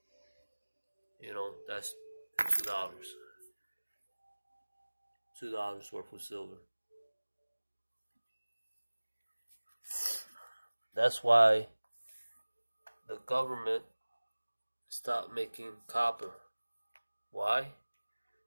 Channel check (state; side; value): inverted; both; correlation -1.00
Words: you know, that's $2. $2 worth of silver. That's why the government stopped making copper. Why?